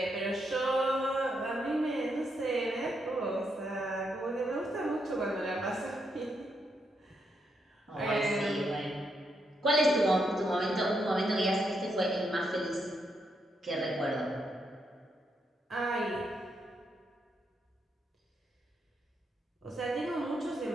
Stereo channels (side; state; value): both; normal; correlation 0.80